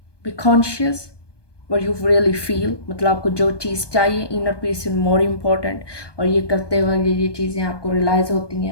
be conscious what you really feel, मतलब आपको जो चीज़ चाहिए, inner peace is more important. और ये करते वक्त ये चीज़ें आपको रियलाइज़ होती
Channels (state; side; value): late; right; 1.2 ms